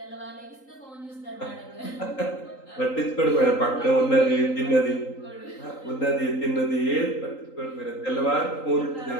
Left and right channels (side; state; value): right; late; 3.8 ms